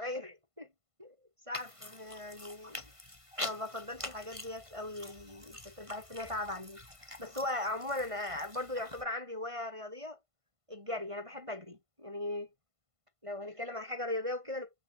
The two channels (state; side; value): late; left; 1.5 ms